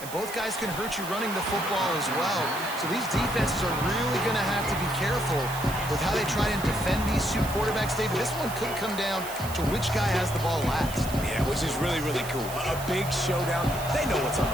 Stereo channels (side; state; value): right; noise; hiss, 12 dB below the sound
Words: and both guys can hurt you running the football as well. So these defenses are really going to have to be careful with how they try and defend these two quarterbacks, David. This one could come down to which guy has the ball last. Yeah, which is really, really cool. A big showdown. They know what's on